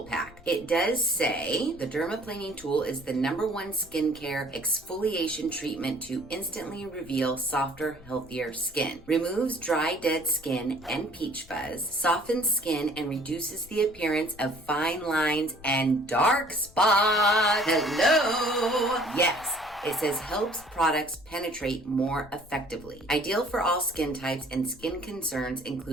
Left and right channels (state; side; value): noise; left; rumble, 22 dB below the sound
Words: pack. It does say the Dermaplaning Tool is the #1 skincare exfoliation treatment to instantly reveal softer, healthier skin. Removes dry, dead skin and peach fuzz, softens skin and reduces the appearance of fine lines and dark spots. Hello! Yes, it says helps products penetrate more effectively. Ideal for all skin types and skin concerns